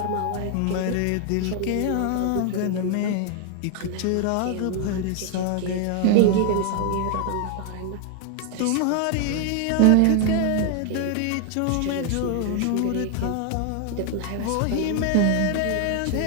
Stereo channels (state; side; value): different; both; correlation 0.00